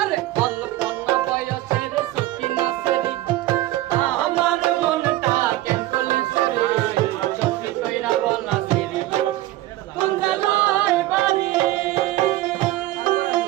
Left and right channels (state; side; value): quieter; left; 16.2 dB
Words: অল্প না বয়সের সকিনা সেরি আমার মনটা কেন করলি চুরি সত্যি কইরা বল না সেরি কোন জেলায় বাড়ি